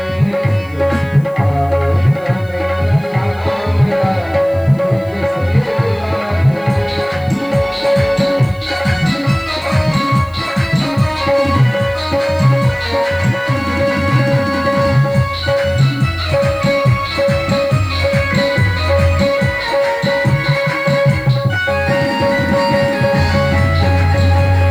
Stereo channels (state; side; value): noise; left; hiss, 29 dB below the sound